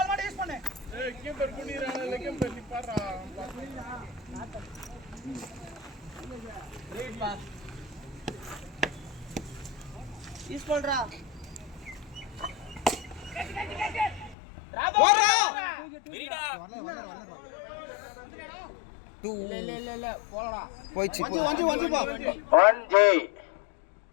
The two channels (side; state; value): right; drops out; at 14.4 s